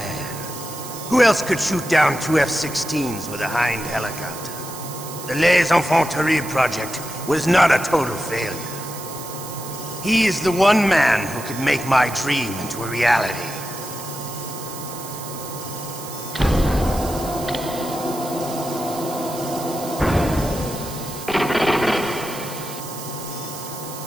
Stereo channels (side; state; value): right; noise; hiss, 12 dB below the sound